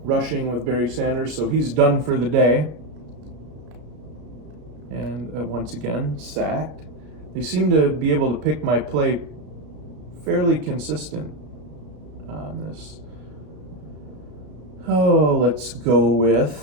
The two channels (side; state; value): left; late; 33 ms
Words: rushing with Barry Sanders, so he's done for the day. And once again, sacked. They seem to be able to pick my play fairly consistent on this. Oh, let's go